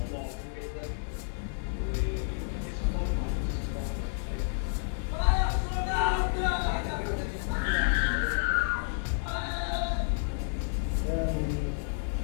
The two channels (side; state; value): right; silent; digital silence